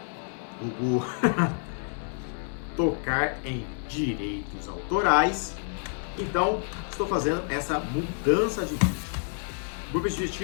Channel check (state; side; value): silent; right; 59 dB below the other